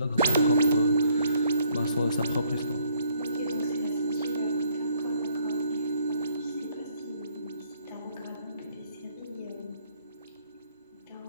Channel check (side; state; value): both; inverted; correlation -0.66